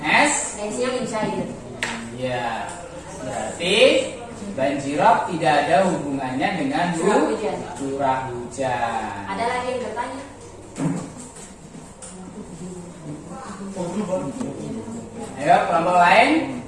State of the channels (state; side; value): identical; both; correlation 1.00